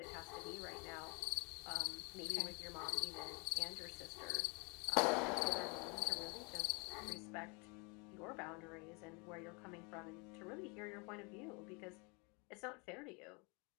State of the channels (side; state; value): right; quieter; 31.1 dB